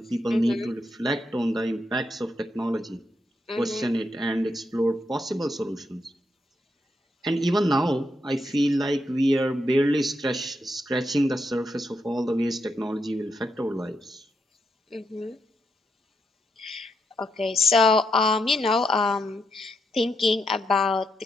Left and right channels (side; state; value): both; normal; correlation 0.81